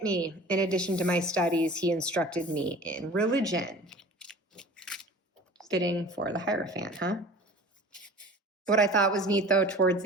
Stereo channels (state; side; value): normal; both; correlation 0.42